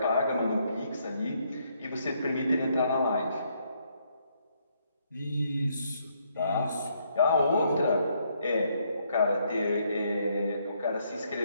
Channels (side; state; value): both; inverted; correlation -0.72